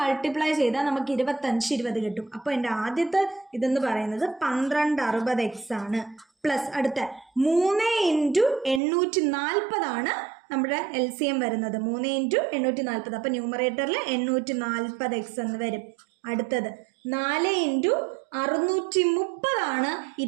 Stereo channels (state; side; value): drops out; left; at 8.8 s